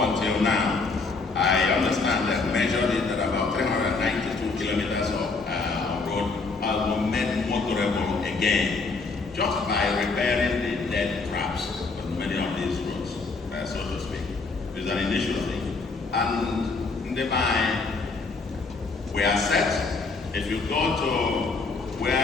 now, I understand that measured it at about 392 kilometers of road has been made motorable again, just by repairing the dead traps on many of these roads, so to speak. It's an initiative. And in the mind, we are set. If you go to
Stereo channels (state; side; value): quieter; right; 4.1 dB